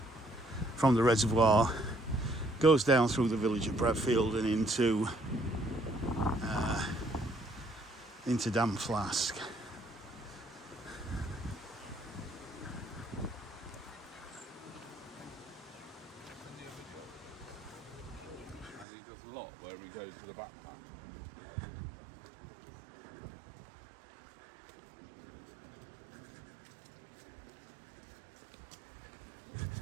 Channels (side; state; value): left; drops out; at 18.9 s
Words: from the reservoir goes down through the village of Bradfield and into Dam Flask. And he does a lot where he goes to the backpack.